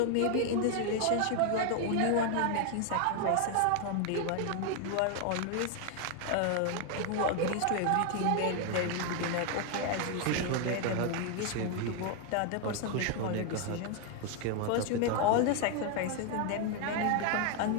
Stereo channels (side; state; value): both; different; correlation 0.01